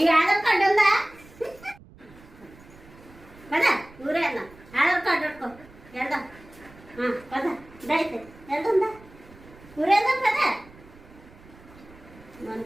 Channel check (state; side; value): noise; right; rumble, 22 dB below the sound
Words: ఆధార్ కార్డు ఉందా పద ఊరేద్దాం ఆధార్ కార్డు పెట్టుకో వెళ్దాం పద దైతే వెళ్తుందా ఊరేద్దాం పద